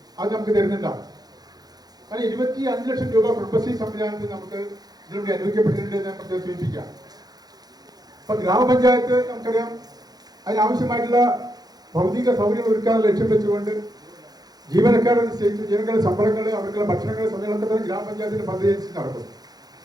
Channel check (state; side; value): late; left; 0.19 ms